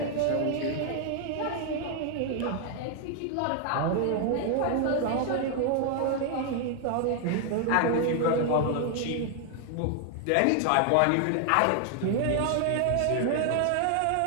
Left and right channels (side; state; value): both; different; correlation 0.00